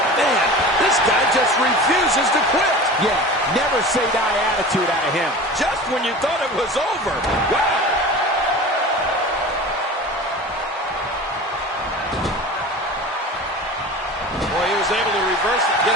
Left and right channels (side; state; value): both; normal; correlation 0.36